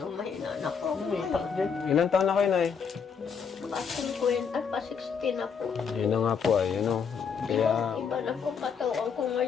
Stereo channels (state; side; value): quieter; right; 6.4 dB